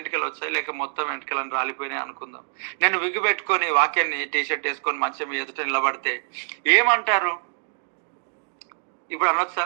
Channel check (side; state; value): left; silent; 62 dB below the other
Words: వచ్చాయి లేక మొత్తం వెంటకలను రాలిపోయినాయి అనుకుందాం. నేను విగ్గు పెట్టుకొని వాక్యాన్ని టీషర్ట్ వేసుకొని మంచం ఎదుట నిలబడితే ఏమంటారు? ఇప్పుడు అనొచ్చా,